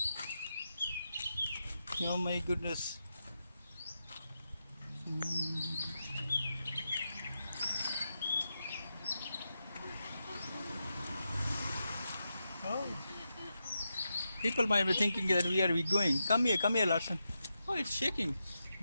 Oh my goodness. Oh. People might be thinking that where are we going? Come here, Larson. Oh, it's shaking.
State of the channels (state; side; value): inverted; both; correlation -0.87